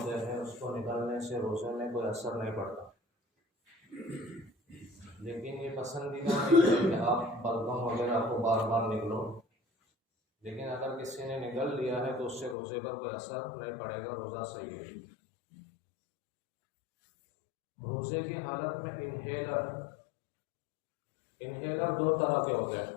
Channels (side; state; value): right; drops out; at 12.6 s